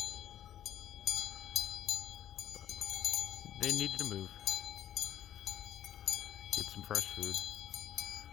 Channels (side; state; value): right; quieter; 11.1 dB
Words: But they needed to move, get some fresh food.